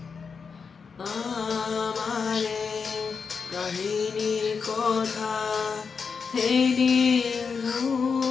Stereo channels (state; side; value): quieter; right; 5.6 dB